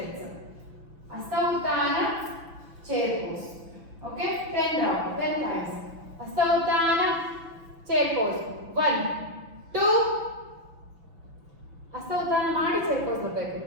Hasta uttana, chair pose. Okay, 10 round, 10 times. Hasta uttana, chair pose. 1 2. ಹಸ್ತ ಉತ್ಥಾನ ಮಾಡಿ ಚೇರ್ ಪೋಸ್ ಬರಬೇಕು.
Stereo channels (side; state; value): left; late; 6.0 ms